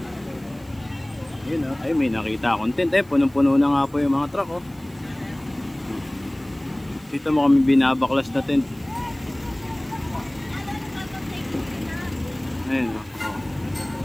Yun, ay may nakita akong tent. Punong-puno na nga po yung mga truck. Dito mo kami binabaklas na tent. Ayun,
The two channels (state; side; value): noise; right; hiss, 27 dB below the sound